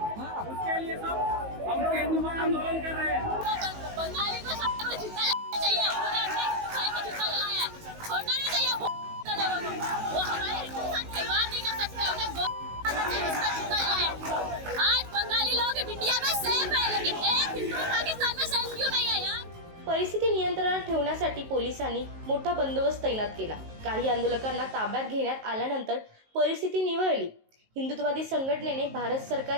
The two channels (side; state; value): left; late; 19 ms